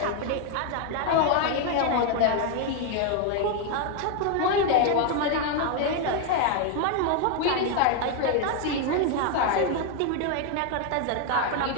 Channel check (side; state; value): both; different; correlation 0.01